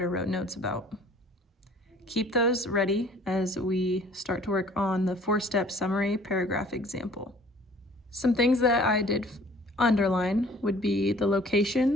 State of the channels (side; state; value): both; normal; correlation 0.53